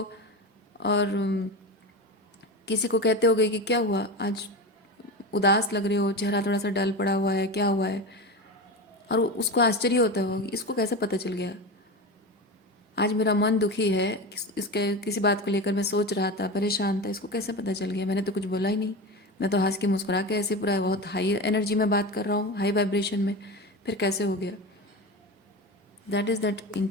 और किसी को कहते होगे कि क्या हुआ, आज उदास लग रहे हो, चेहरा थोड़ा सा डल पड़ा हुआ है, क्या हुआ है। और उसको आश्चर्य होता होगा कि इसको कैसे पता चल गया। आज मेरा मन दुखी है, इसके किसी बात को लेकर मैं सोच रहा था, परेशान था, इसको कैसे पता चल गया? मैंने तो कुछ बोला ही नहीं। मैं तो हंस के मुस्कुरा के ऐसे पूरा बहुत हाई एनर्जी में बात कर रहा हूँ, हाई वाइब्रेशन में, फिर कैसे हो गया? That is that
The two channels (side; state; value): both; normal; correlation 0.24